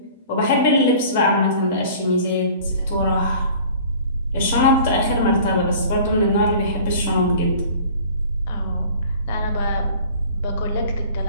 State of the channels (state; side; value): inverted; both; correlation -0.46